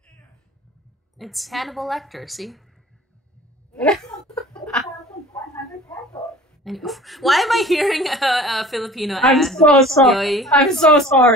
It's Hannibal Lecter, see? And, why am I hearing a Filipino ad? I'm so sorry. Yoyi? I'm so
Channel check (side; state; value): both; normal; correlation 0.45